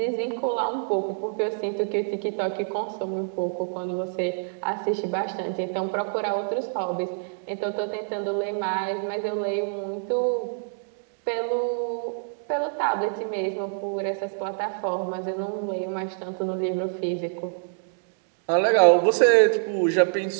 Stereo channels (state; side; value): silent; left; digital silence